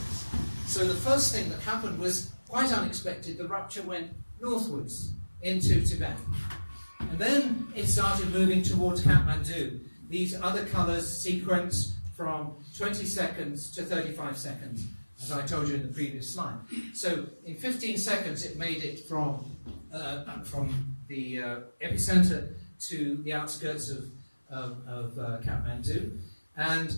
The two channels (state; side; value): inverted; both; correlation -1.00